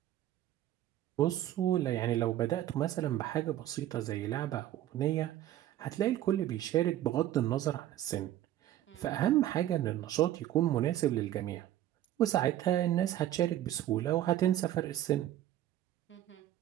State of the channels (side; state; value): left; quieter; 12.9 dB